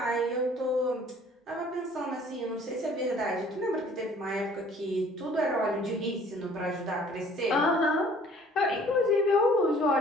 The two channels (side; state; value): both; normal; correlation 0.54